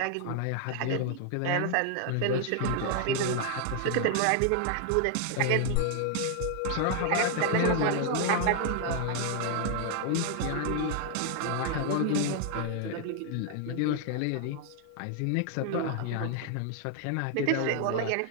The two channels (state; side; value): different; both; correlation 0.00